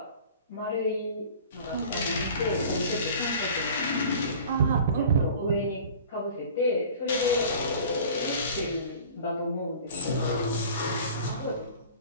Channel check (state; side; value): inverted; both; correlation -0.43